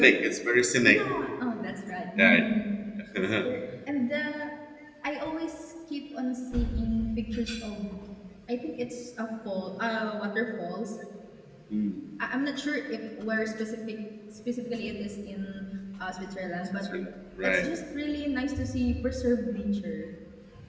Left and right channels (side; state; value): both; identical; correlation 1.00